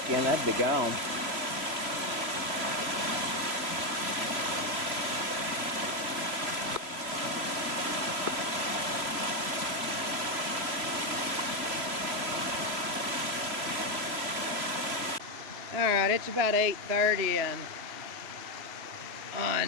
in, that'd be gone. Alright, it's about 8:30 and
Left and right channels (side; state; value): left; late; 3.0 ms